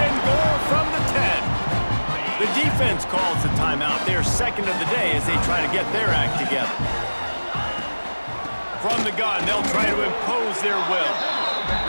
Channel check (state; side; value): inverted; both; correlation -1.00